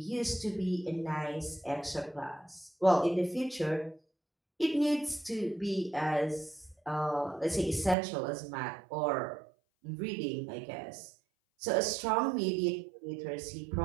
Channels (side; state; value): left; drops out; at 8.0 s